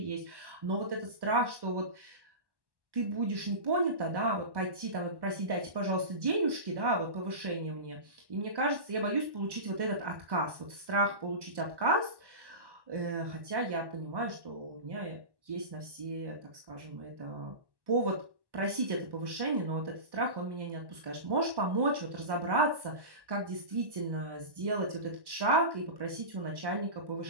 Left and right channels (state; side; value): late; left; 1.1 ms